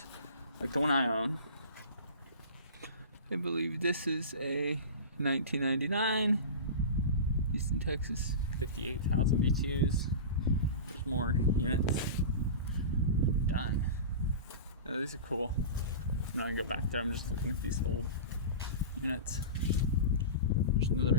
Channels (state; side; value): inverted; both; correlation -0.31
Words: like the one I own. I believe this is a 1999 Houston, Texas, 58,000 BTUs. There's more units. Done. Yeah, these are cool. I'm not gonna go back there. I'm just looking at these old units. There's